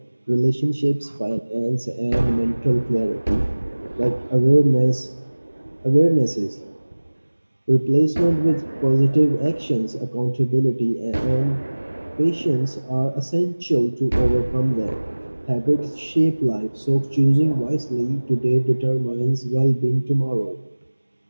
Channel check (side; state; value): both; inverted; correlation -1.00